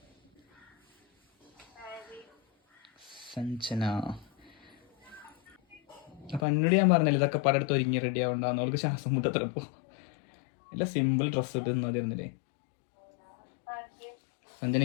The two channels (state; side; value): drops out; right; at 6.5 s